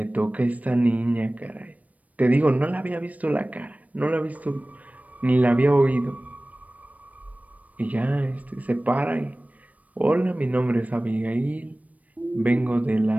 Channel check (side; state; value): left; late; 0.070 ms